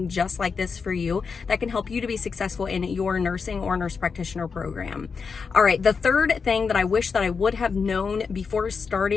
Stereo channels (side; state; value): right; quieter; 5.4 dB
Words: just like this for you that can help you to be successful in your nursing or nurse practitioner program. All right, the third thing that I wish that I would have known before